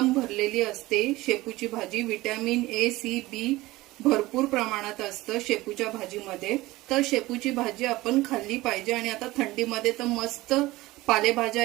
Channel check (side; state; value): left; quieter; 18.9 dB